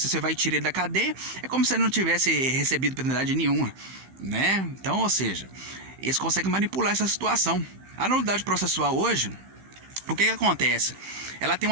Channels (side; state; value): left; late; 15 ms